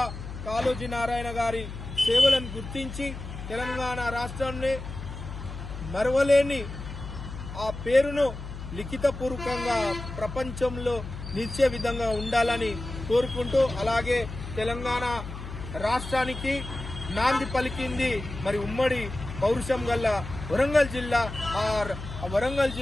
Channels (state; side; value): noise; left; hum, 10 dB below the sound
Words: కాళోజీ నారాయణ గారి సేవలను గుర్తించి తెలంగాణ రాష్ట్రాన్ని మరవలేని ఆ పేరును లిఖితపూర్వకంగా ప్రపంచంలో నిలిచే విధంగా ఉండాలని కోరుకుంటూ, అలాగే తెలంగాణ రాష్ట్రానికి నాంది పలికింది మరి ఉమ్మడి పౌరుషం గల్ల వరంగల్ జిల్లా. ఆ వరంగల్